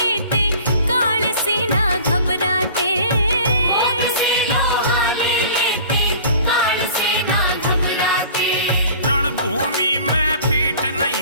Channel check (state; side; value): inverted; both; correlation -0.44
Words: काल से ना घबराते। रणभूमि में पीठ